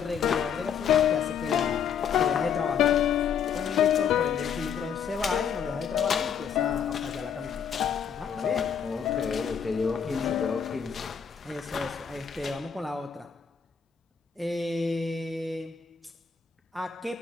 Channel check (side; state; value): right; quieter; 7.4 dB